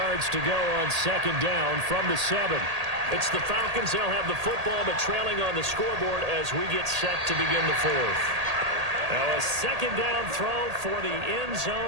to go on 2nd down from the 7. It's the Falcons. They'll have the football, but trailing on the scoreboard as we get set to begin the 4th. Now a 2nd down throw for the end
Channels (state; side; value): late; left; 1.8 ms